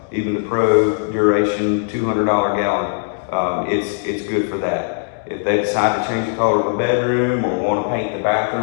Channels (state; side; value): silent; right; digital silence